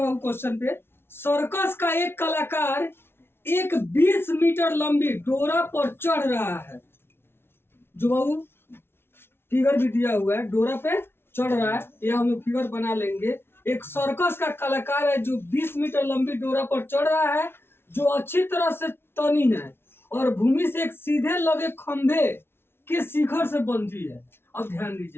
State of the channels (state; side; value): late; right; 0.12 ms